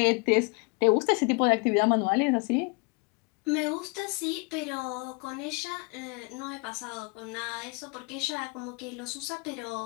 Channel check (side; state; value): right; quieter; 30.7 dB